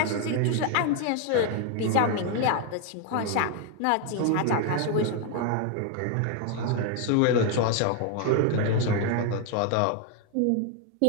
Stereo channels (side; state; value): both; different; correlation 0.01